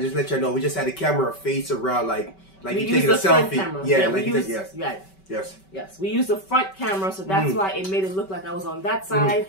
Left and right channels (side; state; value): right; late; 5.2 ms